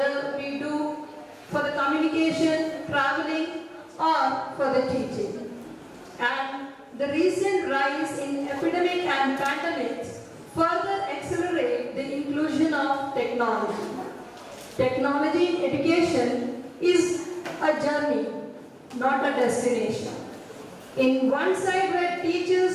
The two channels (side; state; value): both; identical; correlation 1.00